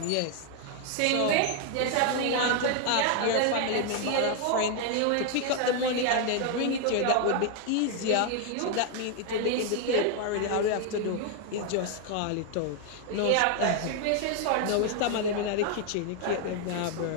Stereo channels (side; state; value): both; different; correlation 0.01